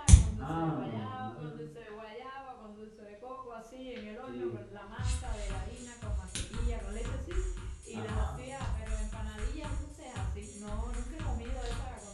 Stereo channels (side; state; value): both; identical; correlation 1.00